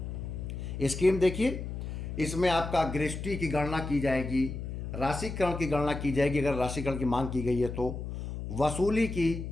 स्कीम देखिए, इसमें आपका गृहस्थी की गणना की जाएगी, राशिकरण की गणना की जाएगी अगर राशिकरण की मांग की गई है तो, वसूली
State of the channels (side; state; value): left; noise; hum, 6 dB below the sound